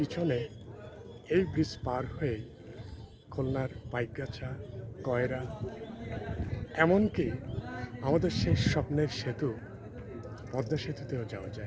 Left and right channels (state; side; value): identical; both; correlation 1.00